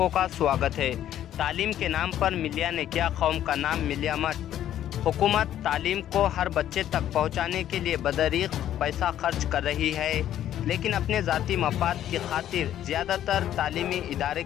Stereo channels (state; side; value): quieter; right; 11.5 dB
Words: का स्वागत है। तालीम के नाम पर मिलिया ने किया कौम का नाम मिलिया मत। हुकूमत तालीम को हर बच्चे तक पहुंचाने के लिए बदरीक पैसा खर्च कर रही है, लेकिन अपने ज़ाती मफाद की खातिर ज़्यादातर तालीमी इदारे